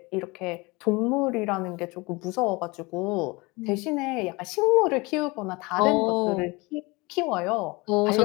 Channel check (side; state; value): right; quieter; 24.9 dB